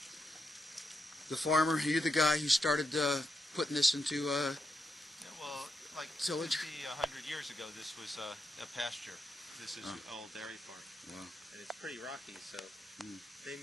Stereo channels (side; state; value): both; normal; correlation 0.83